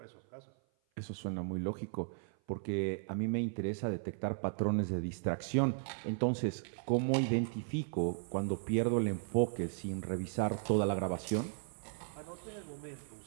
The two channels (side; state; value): left; silent; 54 dB below the other